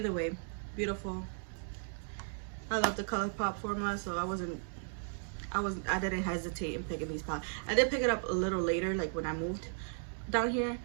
way, beautiful. I love the Colourpop formula, so I didn't hesitate in picking these palettes. I did pick it up a little later, like when I moved down here.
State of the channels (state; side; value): silent; left; digital silence